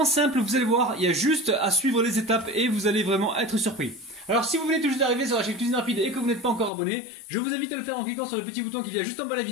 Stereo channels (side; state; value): right; drops out; at 6.7 s